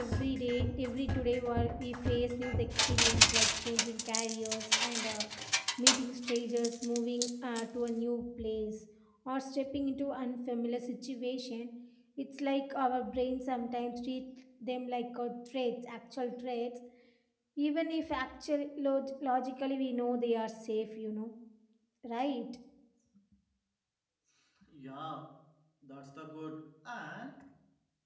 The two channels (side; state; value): both; identical; correlation 1.00